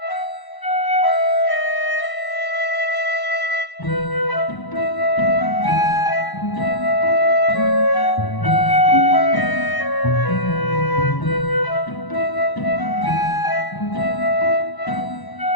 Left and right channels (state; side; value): late; right; 1.0 ms